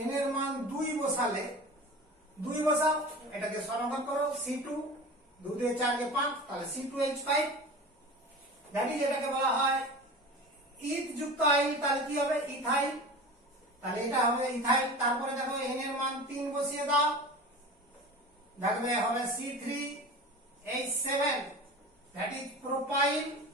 এর মান 2 বসালে, 2 বসাও, এটাকে সমাধান করো, C2 2 দিয়ে 4 কে 5, তাহলে C2H5, জানি যেটাকে বলা হয় ইথ যুক্ত আইল, তাহলে কি হবে, ইথাইল, তাহলে এটা হবে ইথাইল। তারপরে দেখো n এর মান 3 বসিয়ে দাও, দেখবে হবে C3H7, that is propyl,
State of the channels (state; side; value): normal; both; correlation 0.34